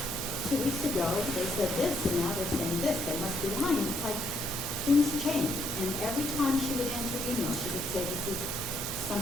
2 weeks ago, they said this, and now they're saying this, they must be lying. It's like, things change. And every time she would answer email, she would say, this is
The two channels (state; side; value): normal; both; correlation 0.72